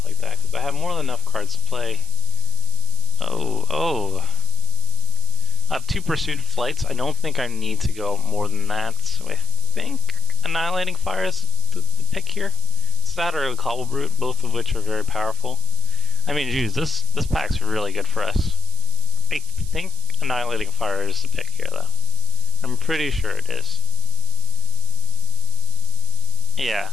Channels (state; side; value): noise; right; hiss, 11 dB below the sound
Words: like that, because I have more than enough cards to play. Oh. I have 2 Pursuit Flights. I don't think I need to go more than that, so I think Annihilating Fire is the pick here. It's that or a Cobble Brute, both of which are very powerful. I mean, geez, this pack's really good for us. I think Annihilating Fire is the pick here, though. I'm pretty sure it is. Yeah,